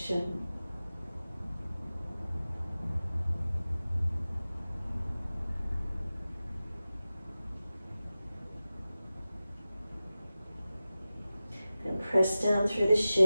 Press down through the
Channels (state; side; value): inverted; both; correlation -0.95